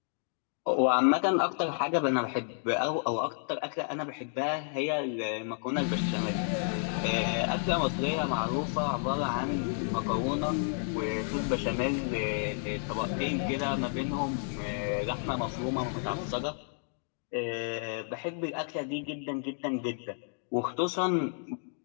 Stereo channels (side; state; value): right; silent; 57 dB below the other